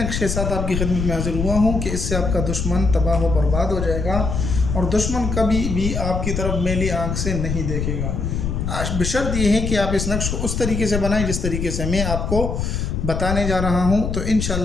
के साथ आपकी खिदमत में हाजिर हुआ हूँ कि इससे आपका दुश्मन तबाह व बर्बाद हो जाएगा और दुश्मन कभी भी आपकी तरफ मैली आँख से नहीं देखेगा। बशर्त ये है कि आप इस नक्श को उस तरीके से बनाएं जिस तरीके से मैं आपको बताने जा रहा हूँ, तो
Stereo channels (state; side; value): noise; left; rumble, 2 dB below the sound